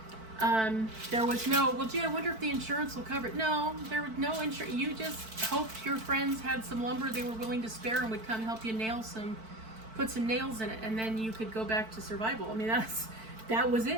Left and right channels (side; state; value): left; late; 4.5 ms